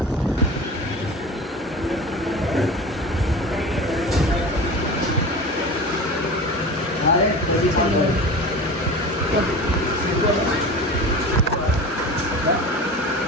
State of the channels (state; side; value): normal; both; correlation 0.33